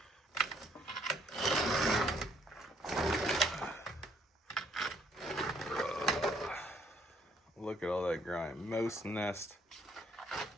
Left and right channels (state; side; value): normal; both; correlation 0.66